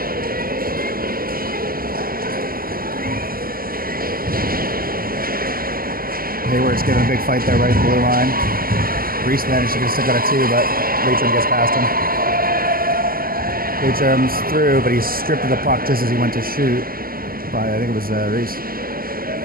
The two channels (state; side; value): late; left; 0.42 ms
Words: Hayward's giving a big fight there right at the blue line. Reese managed to get a stick out of two, but Leitrim gets past him. Leitrim's through, but he's stripped of the puck just as he went to shoot by, I think it was Reese.